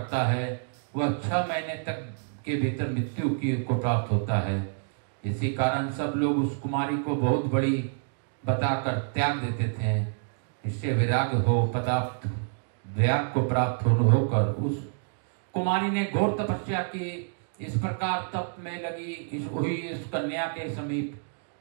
है, वह 6 महीने तक के भीतर मृत्यु को प्राप्त होता है। इसी कारण सब लोग उस कुमारी को बहुत बड़ी बताकर त्याग देते थे। इससे विराग को प्राप्त होकर उस कुमारी ने घोर तपस्या की। इस प्रकार तप में लगी इस कन्या के समीप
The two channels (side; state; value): left; silent; digital silence